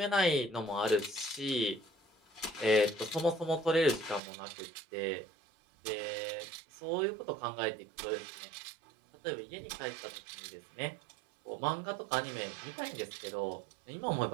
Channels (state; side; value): drops out; left; at 4.2 s